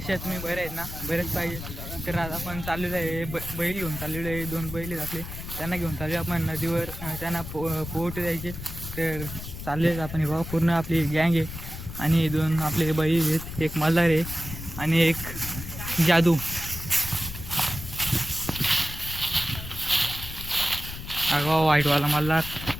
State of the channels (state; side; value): noise; left; rumble, 10 dB below the sound